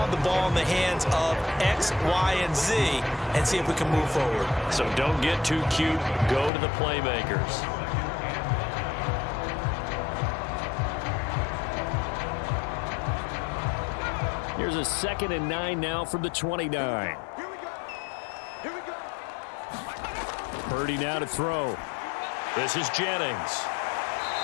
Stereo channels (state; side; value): drops out; right; at 6.5 s